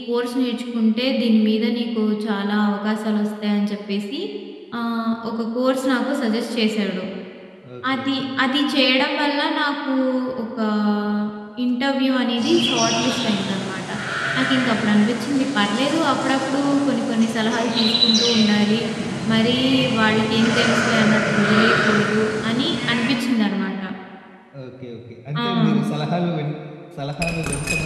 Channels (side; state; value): both; identical; correlation 1.00